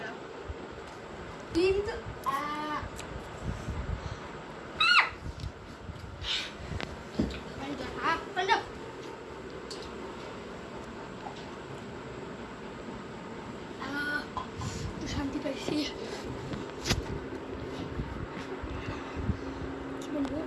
কিন্তু শান্তি পাইছি।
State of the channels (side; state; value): both; identical; correlation 1.00